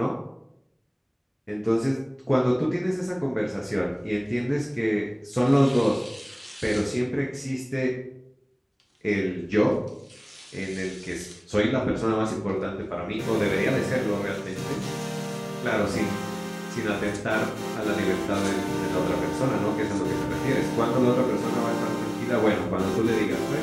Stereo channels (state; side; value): identical; both; correlation 1.00